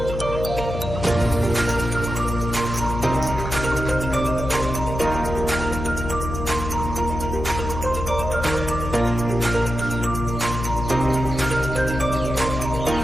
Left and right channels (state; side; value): noise; left; hum, 6 dB below the sound